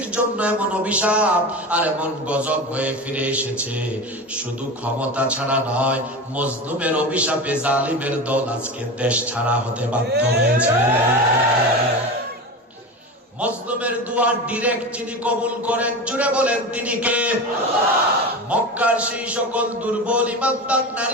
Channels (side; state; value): both; normal; correlation 0.26